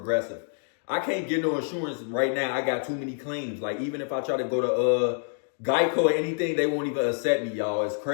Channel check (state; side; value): silent; right; digital silence